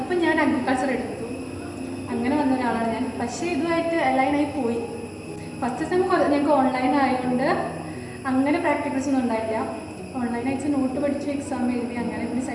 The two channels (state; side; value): identical; both; correlation 1.00